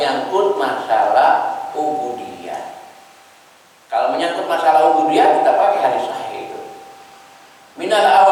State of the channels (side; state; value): both; identical; correlation 1.00